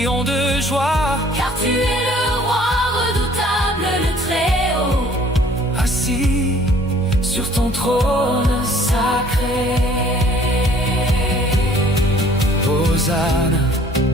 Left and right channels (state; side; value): normal; both; correlation 0.56